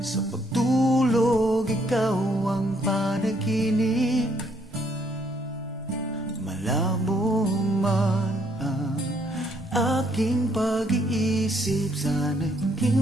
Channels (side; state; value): both; normal; correlation 0.69